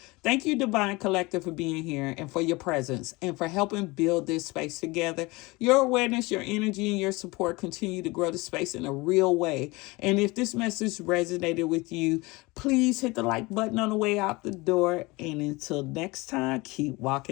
Thank you, Divine Collective, for being here and for your presence and for helping build this space together. Your awareness, your energy, and your support continue to grow the space in a real way. And if this message resonated with you, please hit the like button on the way out the door. And until next time, keep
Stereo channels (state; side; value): quieter; right; 23.5 dB